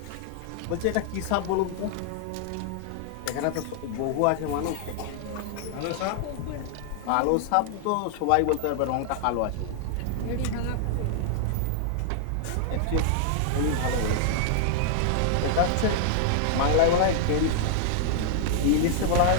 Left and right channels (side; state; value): both; different; correlation -0.01